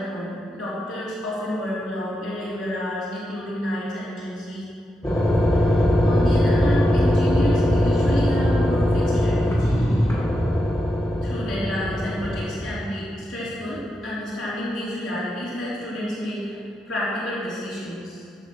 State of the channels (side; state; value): both; normal; correlation 0.87